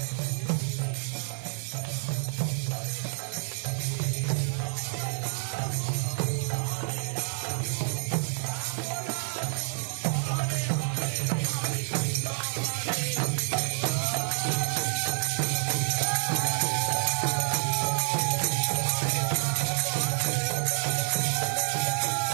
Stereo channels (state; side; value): silent; left; 58 dB below the other